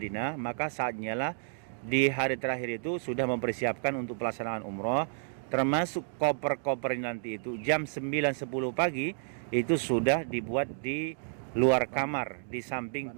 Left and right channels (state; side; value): silent; left; digital silence